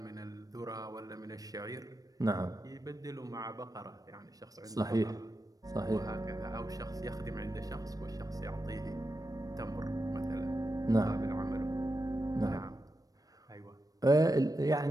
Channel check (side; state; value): left; late; 0.18 ms